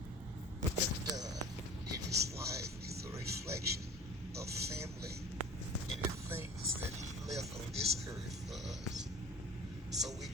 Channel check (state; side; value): normal; both; correlation 0.42